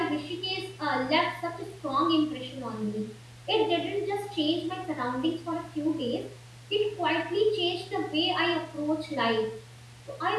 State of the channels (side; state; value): both; identical; correlation 1.00